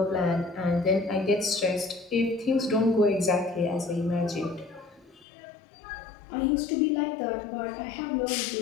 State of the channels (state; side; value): drops out; right; at 5.2 s